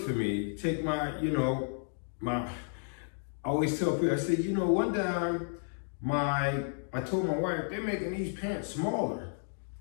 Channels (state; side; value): silent; right; digital silence